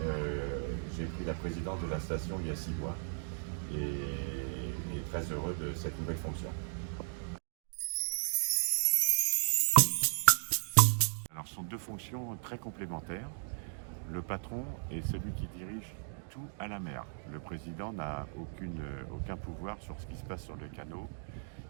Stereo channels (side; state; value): left; silent; digital silence